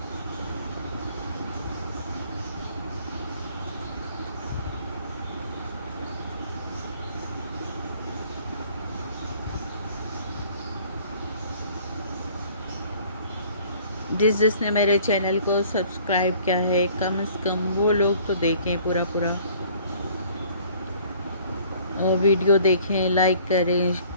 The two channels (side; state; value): both; inverted; correlation -0.55